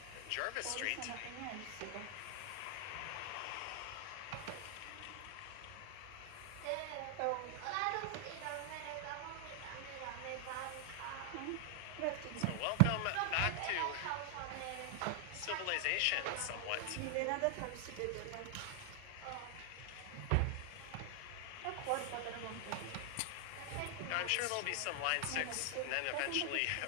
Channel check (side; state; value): both; different; correlation 0.00